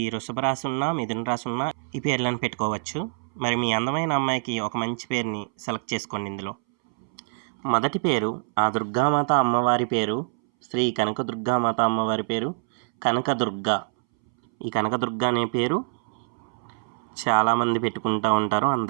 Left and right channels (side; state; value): left; silent; 62 dB below the other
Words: వృషభ రాశి ఉన్నా, మిథున రాశి ఉన్నా ఈ పేర్లను పెట్టుకోవచ్చు. మరి మీ అందమైన అమ్మాయికి ఒక మంచి పేరుని సెలెక్ట్ చేసుకోండి. ఇందులో మొదటి పేరు ఆ దుర్గామాత అమ్మవారి పేరు శ్రీ కనకదుర్గామాత అమ్మవారి పేరు కనకదుర్గ. ఈ కనకదుర్గ అనే పేరు చాలామంది పెట్టుకుంటూ ఉంటారు,